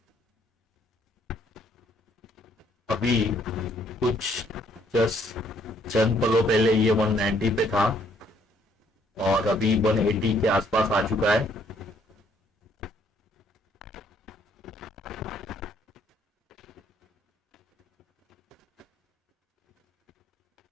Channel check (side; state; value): both; normal; correlation 0.66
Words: अभी कुछ जस्ट चंद पलों पहले ये 190 पे था और अभी 180 के आसपास आ चुका है।